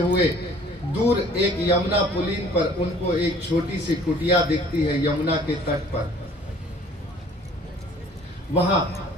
दूर एक यमुना पुलीन पर उनको एक छोटी सी कुटिया दिखती है यमुना के तट पर। वहां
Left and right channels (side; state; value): both; normal; correlation 0.53